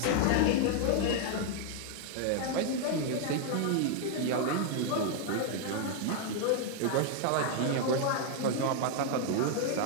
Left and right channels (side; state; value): both; different; correlation 0.00